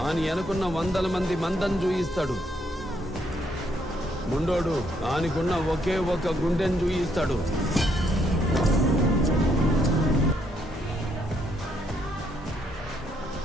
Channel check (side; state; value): both; normal; correlation 0.73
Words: ఆని అనుకున్న 100 మంది మందం చూయిస్తాడు, ముండోడు ఆనికున్న ఒకే ఒక గుండెని చూయిస్తాడు.